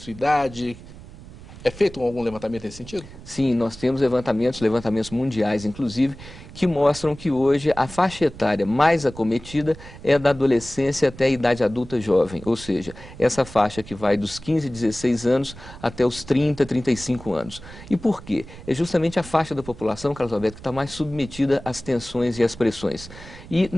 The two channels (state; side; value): noise; right; rumble, 17 dB below the sound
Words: idade? É feito algum levantamento nesse sentido? Sim, nós temos levantamentos mundiais, inclusive, que mostram que hoje a faixa etária mais acometida é da adolescência até a idade adulta jovem, ou seja, essa faixa que vai dos 15, 16 anos até os 30, 35 anos. E por quê? É justamente a faixa da população, Carlos Alberto, que está mais submetida às tensões e às pressões. E,